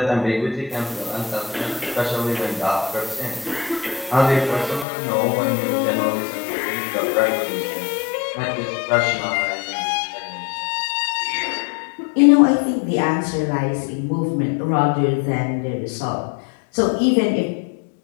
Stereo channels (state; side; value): drops out; right; at 4.9 s